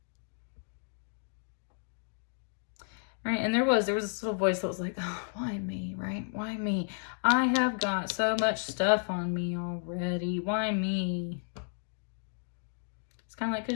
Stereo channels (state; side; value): silent; right; digital silence